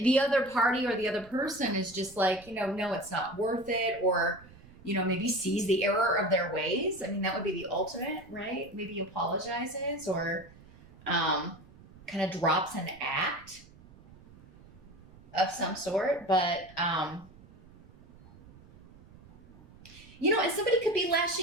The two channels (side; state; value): right; noise; rumble, 23 dB below the sound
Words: other party or the other person is just like, no, it's not worth it, or, maybe sees the error of their ways. I mean, that would be the ultimate, right? Maybe apologizes or, kind of drops an act of some sort, but and somebody could be